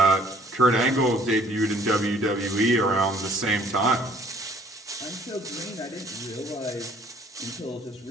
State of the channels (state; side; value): normal; both; correlation 0.58